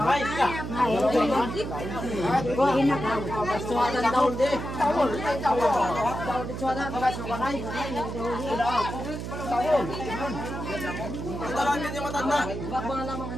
Ay, ka. Suwadan daw di. Tawol. Tawol di suwadan. Suwadan. Tawol. Ito lang din yung matanda. Bakbang lamang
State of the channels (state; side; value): noise; right; hum, 6 dB below the sound